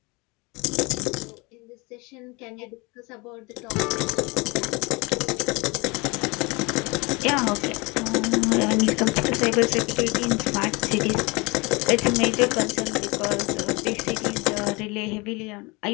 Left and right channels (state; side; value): quieter; right; 26.5 dB